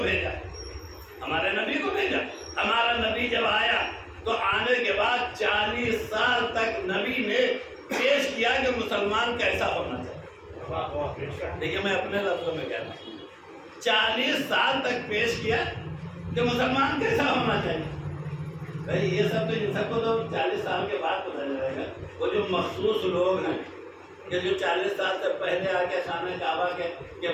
بھیجا۔ ہمارا نبی جب آیا تو آنے کے بعد 40 سال تک نبی نے پیش کیا کہ مسلمان کیسا ہونا چاہیے۔ دیکھیے میں اپنے لفظوں میں کہتا ہوں، 40 سال تک پیش کیا کہ مسلمان کیسا ہونا چاہیے۔ بھائی یہ سب تو ان سب کو تو 40 سال کے بعد پتہ چلے گا۔ وہ جو مخصوص لوگ ہیں کہ جو 40 سال سے پہلے آ کے خانہ کعبہ کے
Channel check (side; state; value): both; identical; correlation 1.00